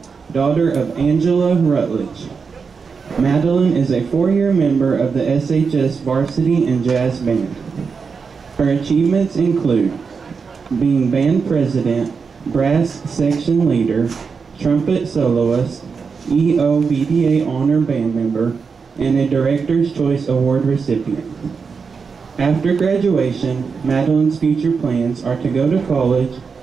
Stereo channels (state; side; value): quieter; left; 5.4 dB